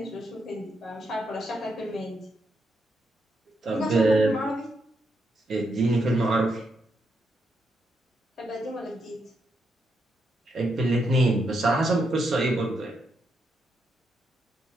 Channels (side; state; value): both; normal; correlation 0.81